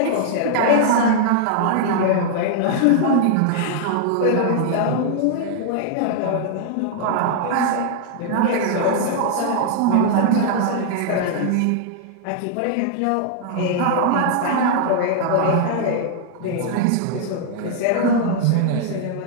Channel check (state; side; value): different; both; correlation 0.00